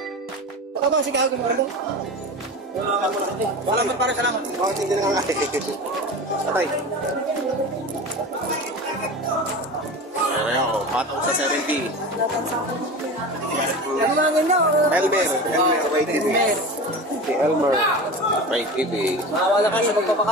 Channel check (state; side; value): normal; both; correlation 0.31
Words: Ito ba, sige ako mo. Salamat para salamat. Bakit hindi na nga? Patay. Ayan ako, patong sa 70. tingin nyo. Elmer may TV. Si Elmer may TV. Mawala kayo sa